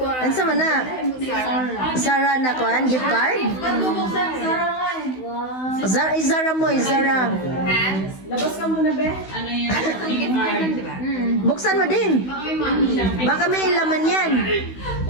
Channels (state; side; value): late; right; 16 ms